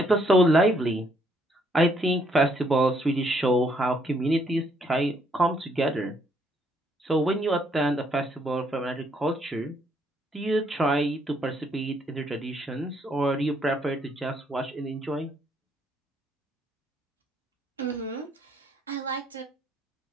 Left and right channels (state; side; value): normal; both; correlation 0.70